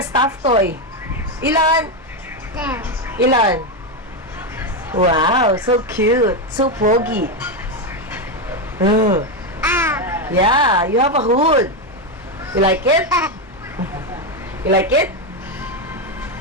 stuffed toy. Ilan? There. Ilan? Wow, so cute. So pogi. Yeah, you have a hood. You like it? You like it?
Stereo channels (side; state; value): both; normal; correlation 0.08